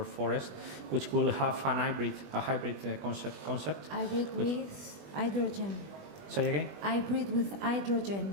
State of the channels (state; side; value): late; left; 20 ms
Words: forest, which will have a hybrid concept. Hybrid with hydrogen. Say again? Hybrid with